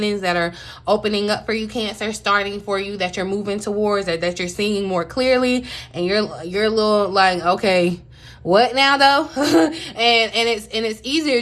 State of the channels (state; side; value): identical; both; correlation 1.00